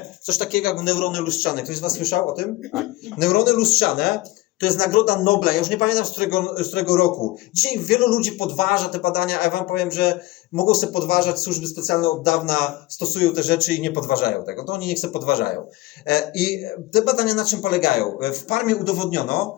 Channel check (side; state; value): right; quieter; 18.5 dB